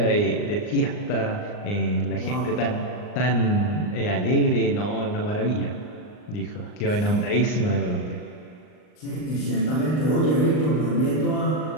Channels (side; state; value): right; late; 39 ms